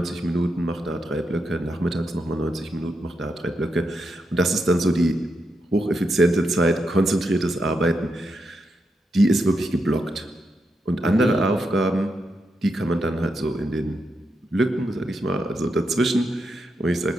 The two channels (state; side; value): normal; both; correlation 0.84